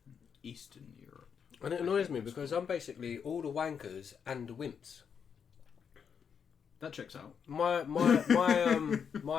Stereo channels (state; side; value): quieter; right; 7.0 dB